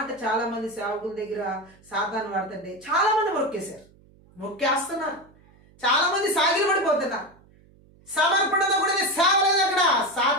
చాలా మంది సేవకుల దగ్గర సాతాను వాడుతుంటే చాలా మంది మొక్కేశారు, మొక్కేస్తున్నారు, చాలా మంది సాగిలు పడిపోతున్నారు. సమర్పణతో కూడిన సేవ లేదు అక్కడ.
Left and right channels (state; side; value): noise; right; hum, 28 dB below the sound